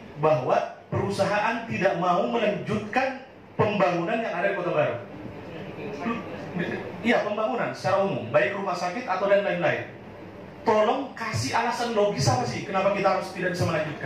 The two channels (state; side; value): identical; both; correlation 1.00